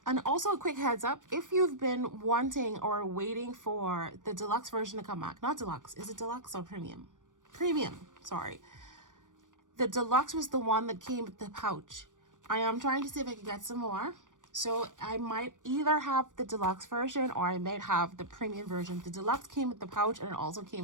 also a quick heads up, if you've been wanting or waiting for the deluxe version to come back, not deluxe, is it deluxe or premium? Premium, sorry. The deluxe was the one that came with the pouch. I am trying to see if I can get some more. So I might either have the deluxe version or I might have the premium version. The deluxe came with the pouch and it also came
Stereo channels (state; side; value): late; left; 0.88 ms